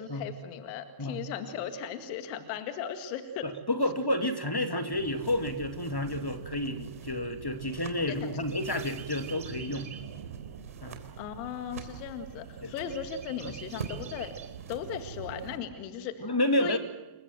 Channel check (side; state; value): both; inverted; correlation -0.38